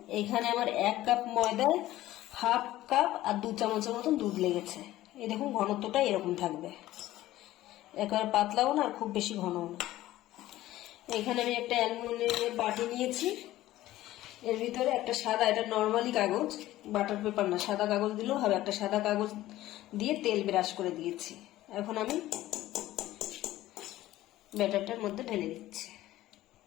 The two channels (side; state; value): right; quieter; 15.4 dB